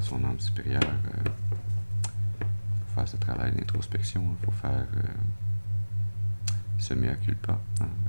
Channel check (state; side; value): inverted; both; correlation -1.00